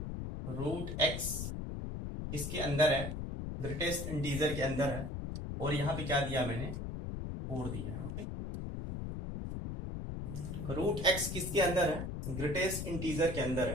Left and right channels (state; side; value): noise; left; rumble, 5 dB below the sound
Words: √x किसके अंदर है, ग्रेटेस्ट इंटीजर के अंदर है, और यहाँ पे क्या दिया मैंने, 4 दिया है। ओके, रूट एक्स किसके अंदर है? ग्रेटेस्ट इंटीजर के अंदर